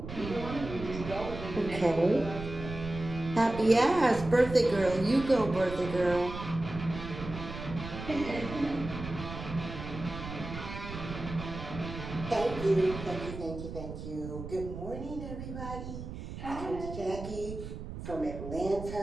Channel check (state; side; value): noise; right; rumble, 9 dB below the sound